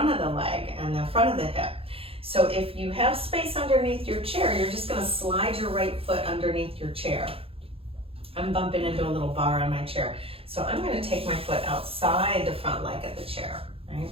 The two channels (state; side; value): late; left; 0.27 ms